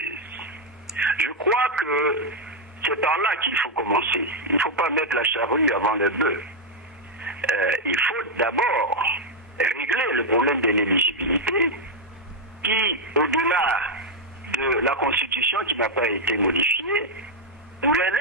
Je crois que c'est par là qu'il faut commencer. Il ne faut pas mettre la charrue avant le bœuf. Il faut d'abord régler le problème de l'éligibilité qui, au-delà de la Constitution qui n'a pas été modifiée, pourrait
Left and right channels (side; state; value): both; normal; correlation 0.00